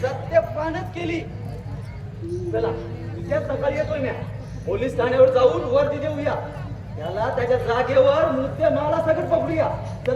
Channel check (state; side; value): identical; both; correlation 1.00